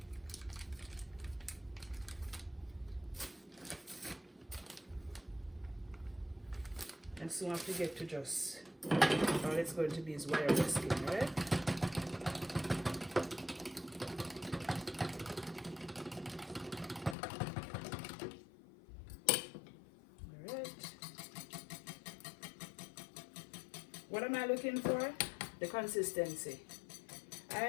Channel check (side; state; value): right; drops out; at 17.2 s